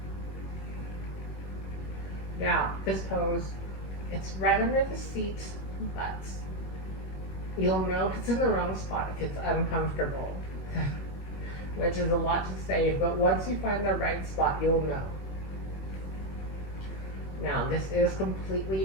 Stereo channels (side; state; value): right; late; 21 ms